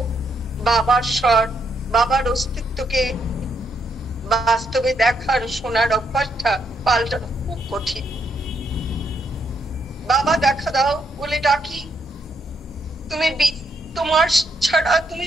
বাবার স্বর, বাবার অস্তিত্বকে বাস্তবে দেখার, শোনার অভ্যাসটা পাল্টানো খুব কঠিন। বাবা দেখা দাও বলে ডাকি, তোমার ছাড়া, তুমি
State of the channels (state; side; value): normal; both; correlation 0.76